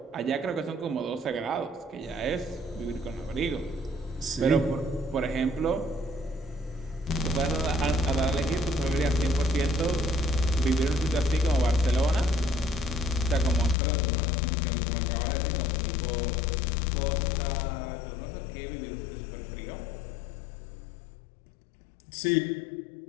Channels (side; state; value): right; drops out; at 13.8 s